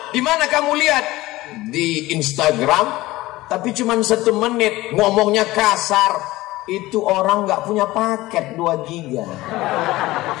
Di mana kamu lihat? Di Instagram. Tapi cuma 1 menit, ngomongnya kasar. Itu orang nggak punya paket 2 giga.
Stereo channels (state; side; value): quieter; right; 18.4 dB